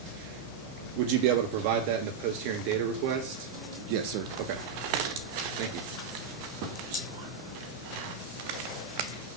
Would you be able to provide that in the post-hearing data request? Yes, sir. Okay. Thank you.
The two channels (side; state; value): left; quieter; 6.3 dB